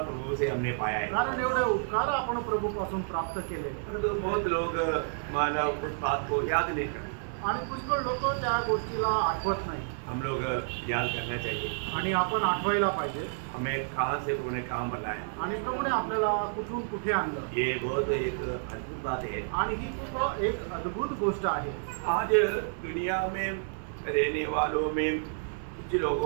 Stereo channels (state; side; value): silent; left; digital silence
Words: प्रभु से हमने पाया है, कारण एवढे उपकार आपण प्रभू पासून प्राप्त केले। तो बहुत लोग मानव उस बात को याद नहीं करते आणि पुष्कळ लोक त्या गोष्टीला आठवत नाही। हम लोग याद करना चाहिए आणि आपण आठवायला पाहिजे हमें कहाँ से प्रभु ने काम बनाया आणि प्रभूने आपल्याला कुठून कुठे आणलं। ये बहुत एक अद्भुत बात है आणि ही खूप एक अद्भुत गोष्ट आहे। आज दुनिया में रहने वालों में कुछ